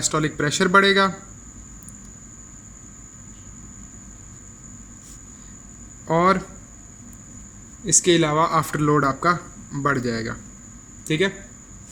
प्रेशर बढ़ेगा, और इसके अलावा आफ्टर लोड आपका बढ़ जाएगा, ठीक है।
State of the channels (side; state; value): both; identical; correlation 1.00